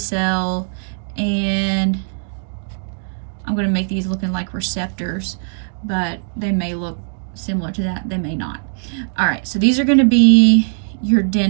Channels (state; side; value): silent; left; digital silence